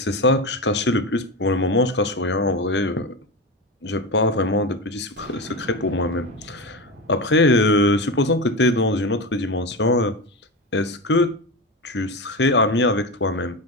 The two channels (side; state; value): both; normal; correlation 0.21